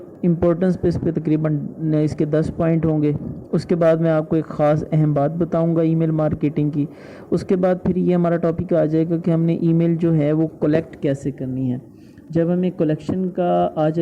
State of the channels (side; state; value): both; identical; correlation 1.00